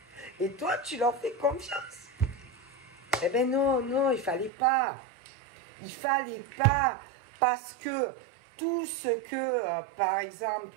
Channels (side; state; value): left; drops out; at 4.5 s